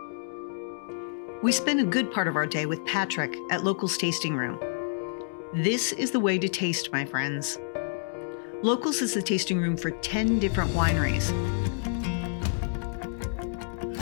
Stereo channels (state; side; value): silent; right; digital silence